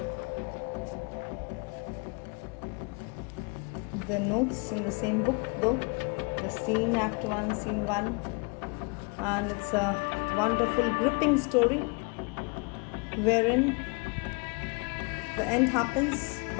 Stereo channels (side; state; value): right; quieter; 31.8 dB